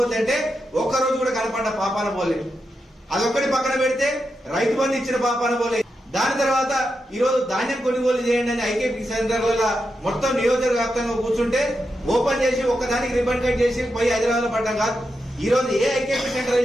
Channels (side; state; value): both; normal; correlation 0.87